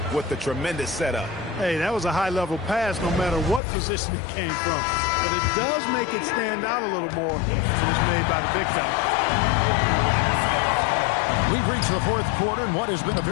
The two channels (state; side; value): drops out; right; at 3.6 s